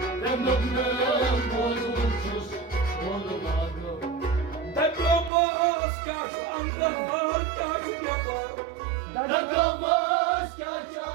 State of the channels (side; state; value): left; drops out; at 5.3 s